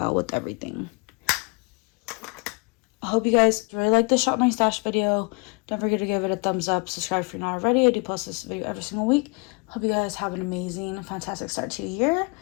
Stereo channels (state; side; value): quieter; right; 31.6 dB